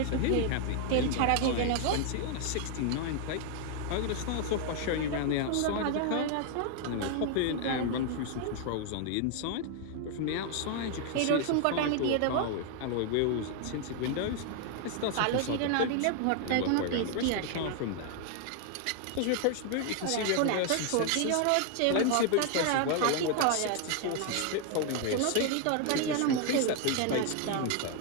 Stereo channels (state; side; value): different; both; correlation 0.00